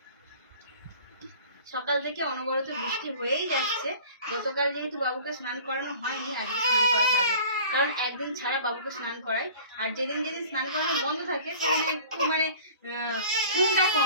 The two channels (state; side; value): inverted; both; correlation -0.45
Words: সকাল থেকে অনবরত বৃষ্টি হয়েই যাচ্ছে। গতকাল যেহেতু বাবুকে স্নান করানো হয়নি, আজকে স্নান করাতে হবে, কারণ একদিন ছাড়া বাবুকে স্নান করাই। আর যেদিন যেদিন স্নান করানো বন্ধ থাকে সেদিন একটু ঘুমটা